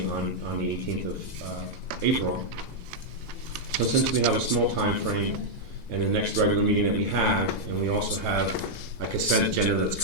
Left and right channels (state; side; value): late; right; 2.0 ms